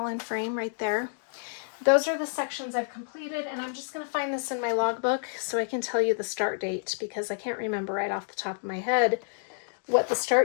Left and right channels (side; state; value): right; silent; digital silence